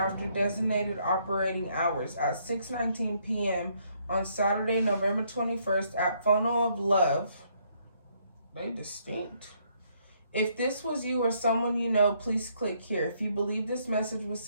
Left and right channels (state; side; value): inverted; both; correlation -0.70